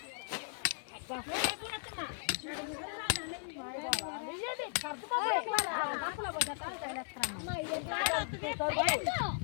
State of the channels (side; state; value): right; silent; 53 dB below the other